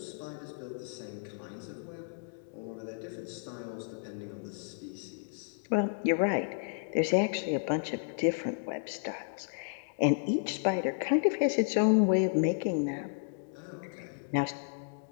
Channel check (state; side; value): silent; right; digital silence